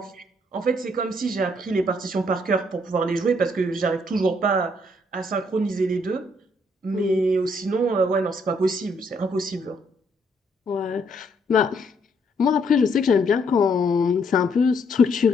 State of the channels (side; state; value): both; normal; correlation 0.70